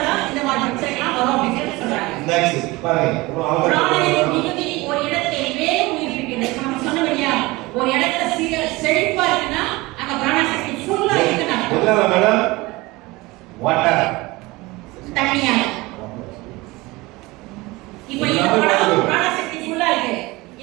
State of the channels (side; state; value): left; quieter; 21.8 dB